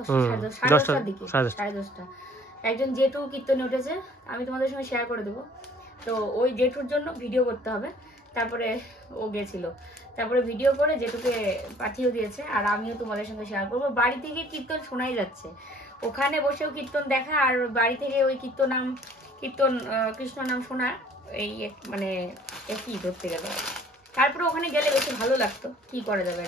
দিকে, 10:30। একজন জেঠু কীর্তনে উঠেছে, আমি তোমাদের সঙ্গে শেয়ার করে দেবো। তো ওই জেঠুর জন্য ভিডিও করতে হবে, তারপরে ও গেছিল, তারপরে ভিডিও করে জেঠুকে পাঠিয়ে দিয়েছে। আর আমিও তোমাদের সঙ্গে শেয়ার করবো। বাড়ি থেকে কীর্তন শোনাই যাচ্ছে, ওখানে বসেও কীর্তন দেখা আর বাড়ি থেকে ওই কীর্তন কৃষ্ণ নাম শোনা, এই মানে একই ধরতে গেল। তারপরে ওখানে গেলে বেশি ভালো লাগতো, কি করা যাবে,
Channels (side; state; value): both; normal; correlation 0.55